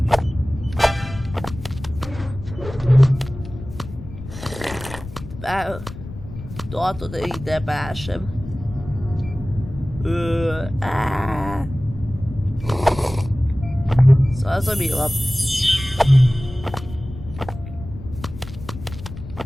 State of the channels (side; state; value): left; noise; rumble, 13 dB below the sound